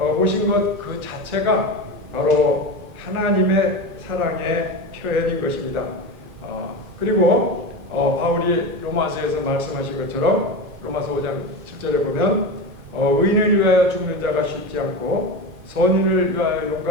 것 그 자체가 바로 하나님의 사랑의 표현인 것입니다. 그리고 바울이 로마서에서 말씀하신 것처럼 로마서 5장 7절에 보면 의인을 위하여 죽는 자가 쉽지 않고 선인을 위하여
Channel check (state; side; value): late; left; 1.5 ms